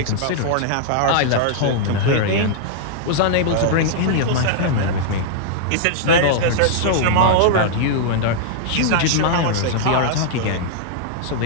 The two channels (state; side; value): different; both; correlation -0.01